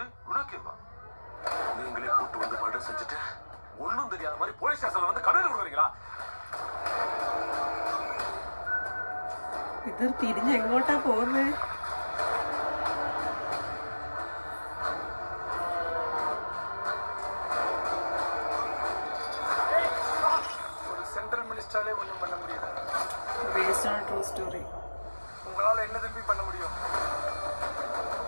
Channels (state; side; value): inverted; both; correlation -1.00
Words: ഇത് തിരിഞ്ഞ് എങ്ങോട്ടാ പോകുന്നത്? Based on a true story. உங்களால என்ன திருப்பி பண்ண முடியும்?